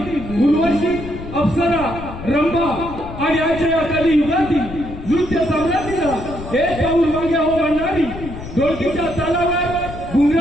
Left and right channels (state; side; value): noise; left; rumble, 11 dB below the sound